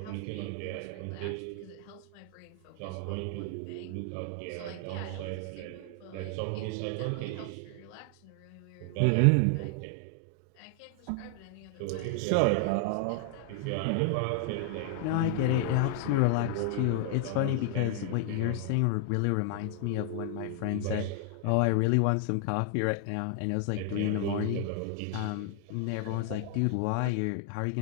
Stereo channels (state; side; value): different; both; correlation 0.00